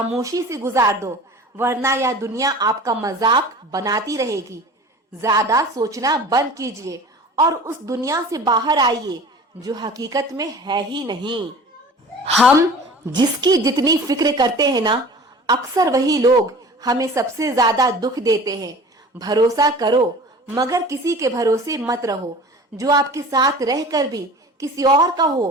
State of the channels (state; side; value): normal; both; correlation 0.41